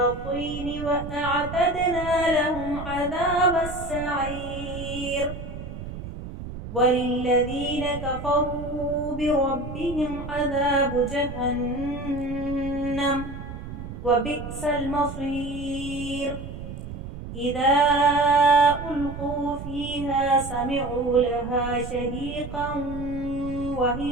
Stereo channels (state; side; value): noise; right; rumble, 10 dB below the sound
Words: وأعتدنا لهم عذاب السعير، وللذين كفروا بربهم عذاب جهنم وبئس المصير، إذا ألقوا فيها سمعوا لها شهيقا